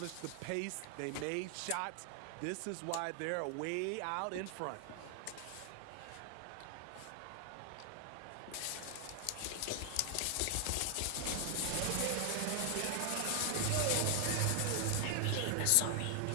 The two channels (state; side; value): different; both; correlation 0.00